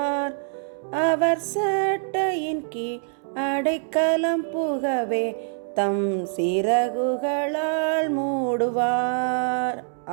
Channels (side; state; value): left; silent; digital silence